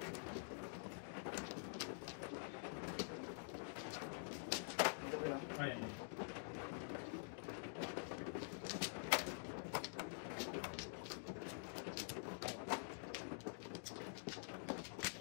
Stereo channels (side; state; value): right; silent; digital silence